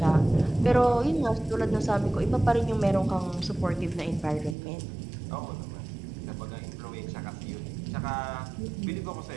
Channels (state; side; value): drops out; left; at 4.5 s